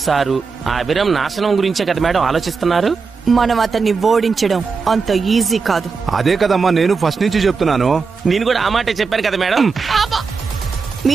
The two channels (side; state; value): left; quieter; 4.9 dB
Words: సారు ఆ అభిరామ్ నాశనం గురించే కదా మేడం ఆలోచిస్తున్నారు. మనం అతన్ని ఓడించడం అంత ఈజీ కాదు. అదే కదమ్మా నేను ఫస్ట్ నుంచి చెప్తున్నాను. నేను కూడా ఆ మాటే చెప్పాను కదా మేడం.